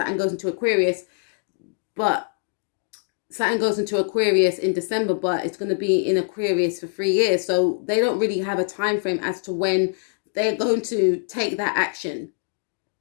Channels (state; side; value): silent; right; digital silence